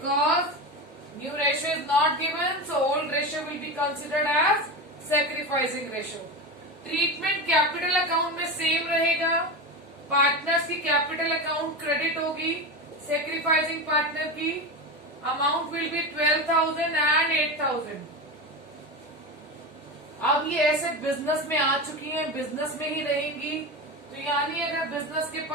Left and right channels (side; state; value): both; normal; correlation 0.21